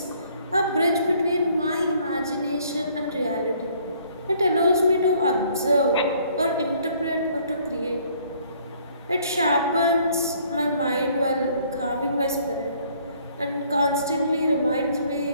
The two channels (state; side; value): inverted; both; correlation -0.61